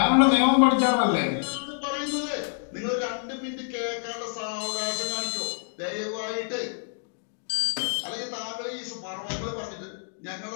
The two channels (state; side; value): silent; right; digital silence